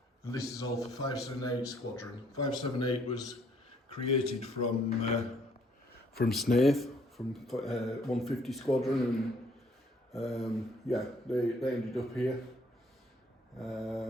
And this is all for 578 Squadron. 578 was created from Snaith, from 150 Squadron, and yeah, they ended up here.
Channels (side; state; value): both; normal; correlation 0.64